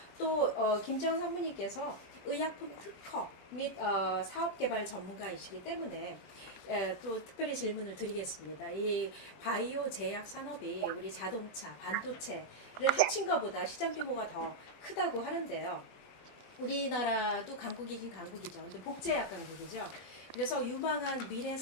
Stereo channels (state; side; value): late; right; 23 ms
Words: 또 김지영 상무님께서 의약품 특허 및 사업개발 전문가이시기 때문에 또 특별히 질문을 드리겠습니다. 이 바이오 제약 산업이 우리 자동차, 반도체를 합친 것보다 시장 규모가 더 크다고 하는데요. 우리나라도 강국이긴 강국이죠. 근데 복제약 강국이죠. 그래서 유망한 미래